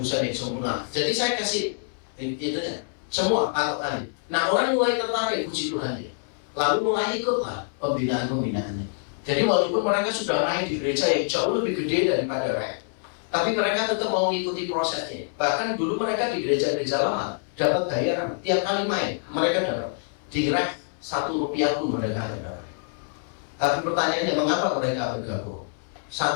yang sempurna. Jadi saya kasih itu ya, semua patokannya. Nah orang mulai tertarik, puji Tuhan ya. Lalu mulai ikutlah pembinaan-pembinaannya. Jadi walaupun mereka sudah main di gereja yang jauh lebih gede daripada REK, tapi mereka tetap mau mengikuti prosesnya. Bahkan dulu mereka di gereja-gereja lama dapat bayaran tiap kali main, mereka dapat di REK Rp1 pun mereka ada. Tapi pertanyaannya, mengapa mereka bergabung?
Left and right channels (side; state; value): right; silent; 61 dB below the other